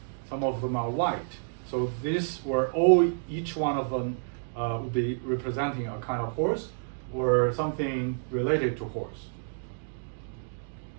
some of them are white. So these were each one of them would be representing a kind of horse or something related to horse.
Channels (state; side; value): silent; left; digital silence